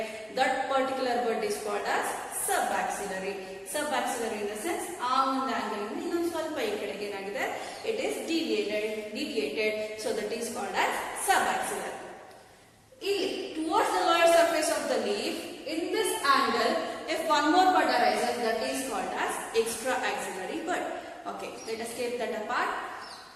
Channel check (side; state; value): both; identical; correlation 1.00